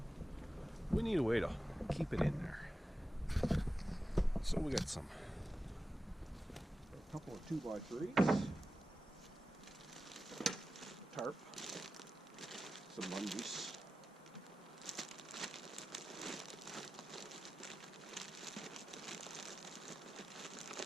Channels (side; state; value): both; normal; correlation 0.93